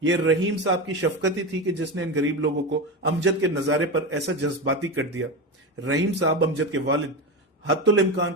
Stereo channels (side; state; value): both; normal; correlation 0.19